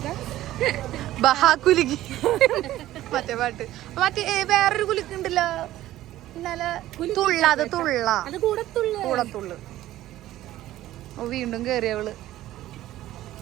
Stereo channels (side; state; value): left; quieter; 14.5 dB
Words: ബഹാ കുലുക്കി മറ്റേ പാട്ട് മറ്റേ വേറൊരു കുലുക്ക് ഉണ്ടല്ലോ ഇന്നലെ കൂടത്തുള്ളു. വീണ്ടും കേറിയവള്.